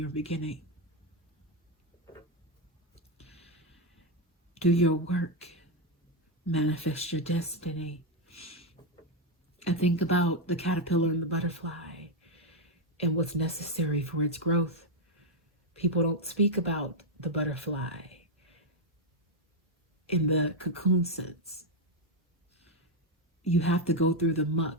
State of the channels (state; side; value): normal; both; correlation 0.03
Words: beginning. Do your work. Manifest your destiny. And think about the caterpillar and the butterfly and what's necessary for its growth. People don't speak about the butterfly in the cocoon sense. You have to go through the